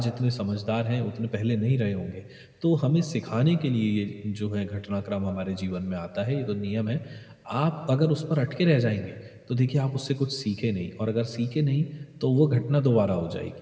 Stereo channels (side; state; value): both; identical; correlation 1.00